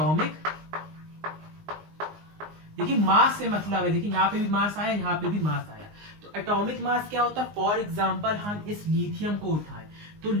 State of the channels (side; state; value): left; late; 19 ms